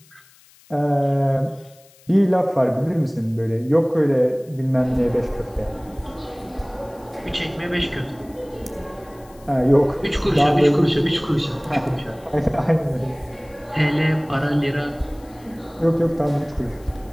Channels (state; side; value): noise; left; hiss, 28 dB below the sound